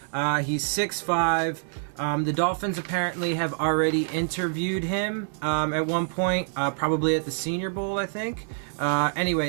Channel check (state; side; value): silent; left; 61 dB below the other